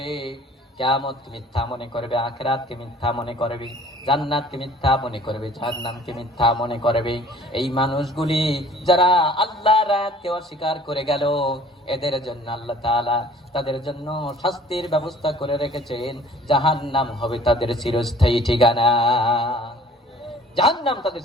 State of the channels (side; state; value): both; normal; correlation 0.51